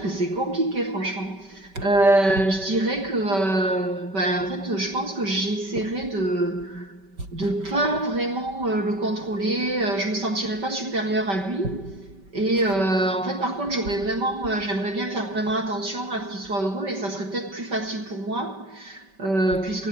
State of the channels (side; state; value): left; late; 5.2 ms